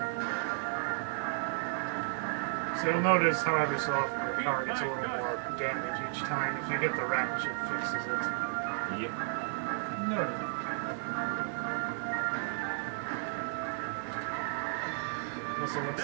So you'll notice, however, so often your car gets a little more damage each time. If you get the wrench, it fixes it. Yep. No. Also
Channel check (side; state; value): left; silent; digital silence